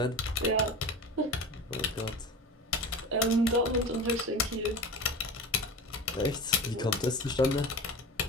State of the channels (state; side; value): normal; both; correlation 0.31